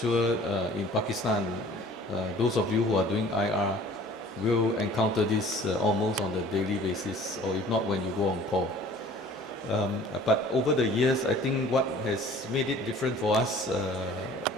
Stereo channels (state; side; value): normal; both; correlation 0.50